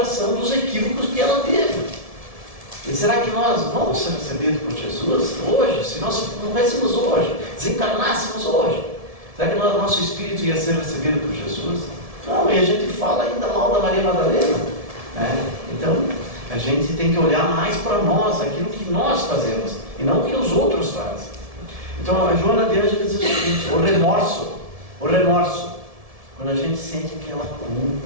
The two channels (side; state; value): left; late; 1.7 ms